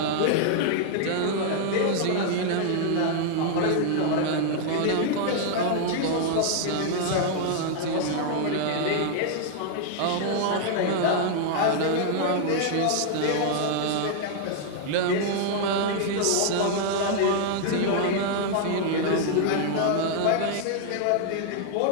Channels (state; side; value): different; both; correlation 0.00